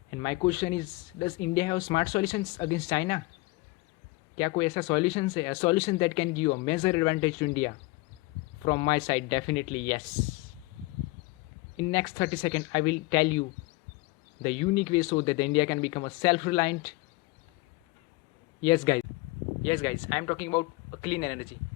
And my question is, does India have smart solutions against China? क्या कोई ऐसा solutions है, a solution that can give a major advantage to India? From my side, definitely yes. In next 30 seconds, I will tell you the unique way so that India can become a self-reliant. Yes, guys. Yes, guys. I am talking about a clean energy.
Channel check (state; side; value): quieter; right; 23.1 dB